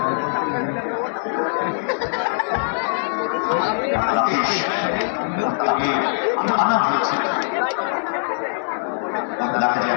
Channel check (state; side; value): silent; right; digital silence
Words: আমি আনা হয়েছে। দেখা